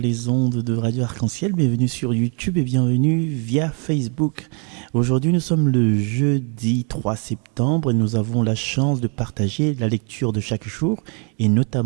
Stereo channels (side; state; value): left; quieter; 37.4 dB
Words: ondes de Radio Arc-en-Ciel, bienvenue sur YouTube et bienvenue via Facebook. Aujourd'hui, nous sommes le jeudi 3 septembre et nous avons la chance de partager la lecture de chaque jour et